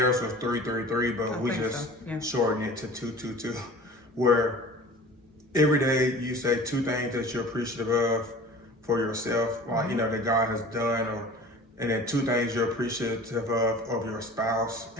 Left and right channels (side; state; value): both; normal; correlation 0.42